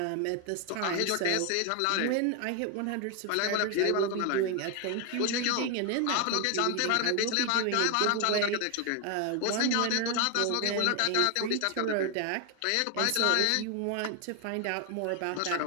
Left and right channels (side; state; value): both; different; correlation 0.01